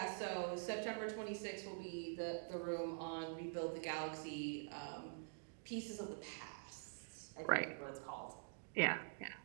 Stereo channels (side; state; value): left; silent; digital silence